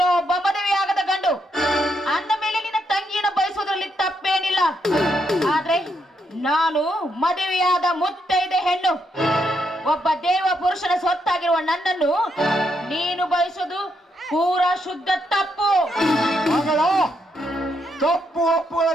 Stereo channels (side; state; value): both; normal; correlation 0.78